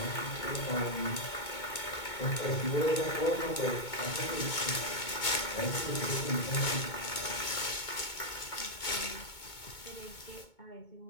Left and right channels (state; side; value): late; right; 2.2 ms